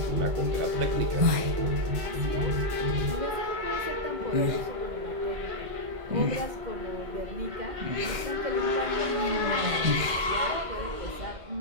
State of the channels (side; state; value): left; late; 1.6 ms